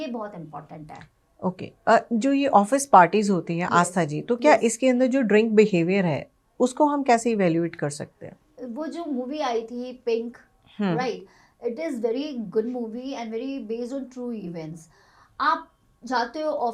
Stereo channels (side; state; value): both; identical; correlation 1.00